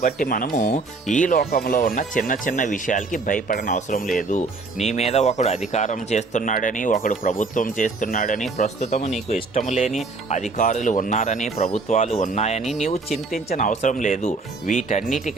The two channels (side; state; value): left; quieter; 3.9 dB